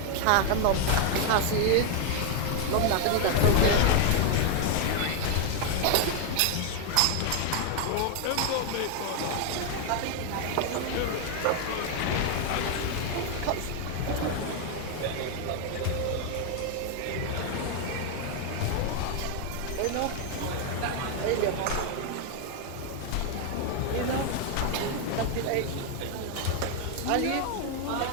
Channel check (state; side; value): different; both; correlation 0.01